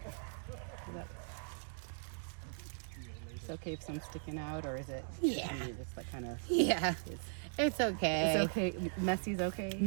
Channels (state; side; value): silent; left; digital silence